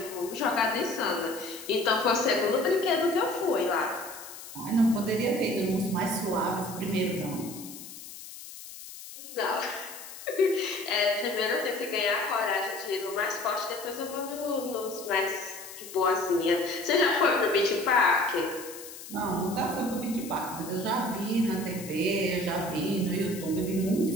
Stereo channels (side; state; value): left; noise; hiss, 14 dB below the sound